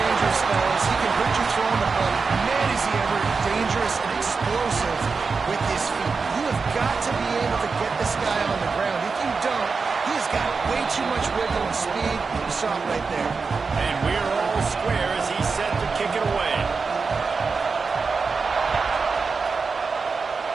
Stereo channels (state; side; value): quieter; left; 4.7 dB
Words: fellas. He can hurt you throwing the ball. Man, is he ever dangerous and explosive with his feet. You have got to be able to get this guy on the ground. If you don't, he's got way too much wiggle and speed. You saw it right there. And we're all square as he's set to kick it away.